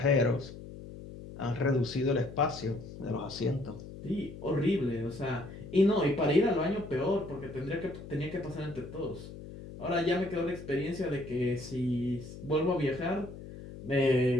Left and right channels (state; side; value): noise; left; hum, 13 dB below the sound